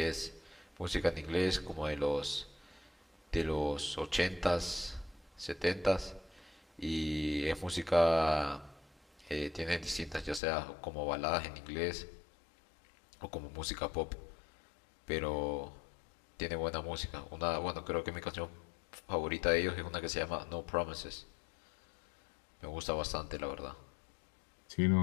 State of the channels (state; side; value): drops out; right; at 10.4 s